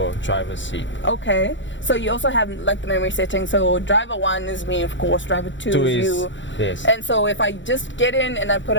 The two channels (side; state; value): right; late; 0.54 ms